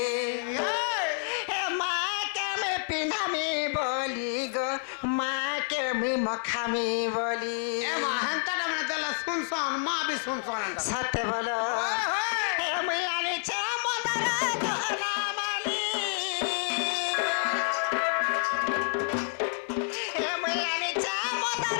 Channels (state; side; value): silent; right; 59 dB below the other